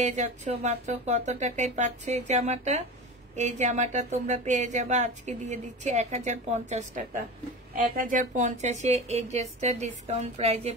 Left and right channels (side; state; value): both; normal; correlation 0.29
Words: যাচ্ছ মাত্র কত টাকায় পাচ্ছ এই জামাটা? এই জামাটা তোমরা পেয়ে যাবা, আজকে দিয়ে দিচ্ছি 1050 টাকা। 1050-এ এই ড্রেসটা ডিসকাউন্ট প্রাইজে